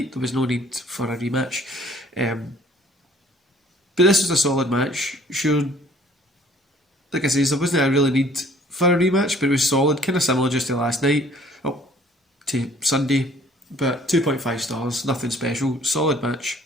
There was no need for a rematch. But this was a solid match. Sure, like I say, there wasn't a really need for a rematch, but it was solid. Kind of similar just to last night. Oh, to Sunday. But 2.5 stars. Nothing special. Solid match.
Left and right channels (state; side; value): normal; both; correlation 0.57